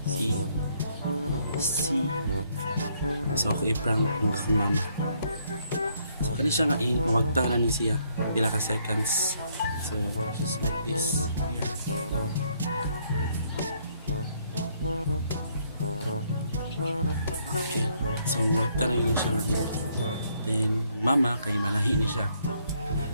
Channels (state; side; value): inverted; both; correlation -0.70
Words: See? So ako i-prank ng akong mama. So kani siya nga pamagtanan ni siya. Pila ka seconds. So just like this here. Okay, so magtanay din siya ngayon. Then, mama, kay manahi ni siya.